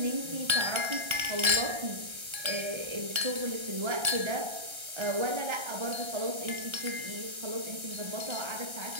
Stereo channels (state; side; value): late; left; 1.3 ms